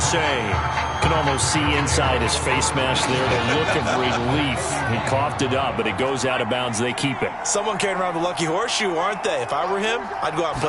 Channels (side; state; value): both; identical; correlation 1.00